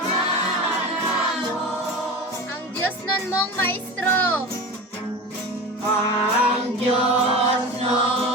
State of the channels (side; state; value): both; normal; correlation 0.31